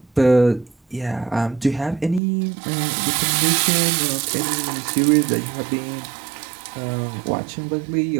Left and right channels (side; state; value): left; drops out; at 2.2 s